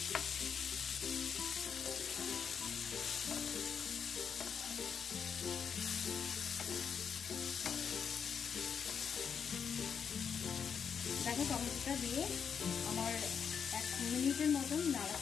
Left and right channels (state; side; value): quieter; right; 7.0 dB